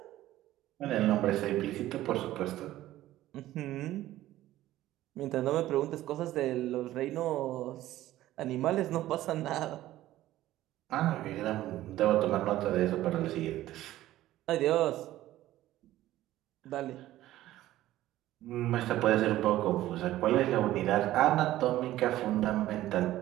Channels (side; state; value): left; quieter; 14.8 dB